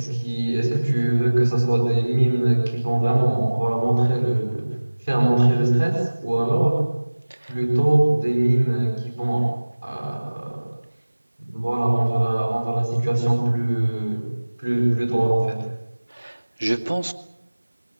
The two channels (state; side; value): inverted; both; correlation -1.00